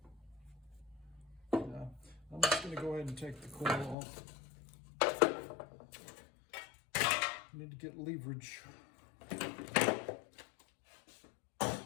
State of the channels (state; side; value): drops out; right; at 4.0 s